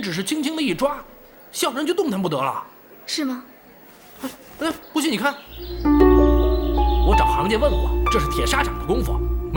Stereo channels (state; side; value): identical; both; correlation 1.00